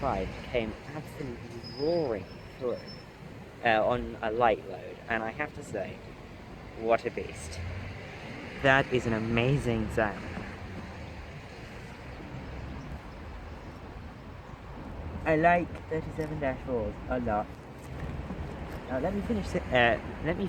came absolutely roaring through on a light load, and I have to say, what a beast. That is an amazing sound. I like 37-4s a lot. Now let me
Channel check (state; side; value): identical; both; correlation 1.00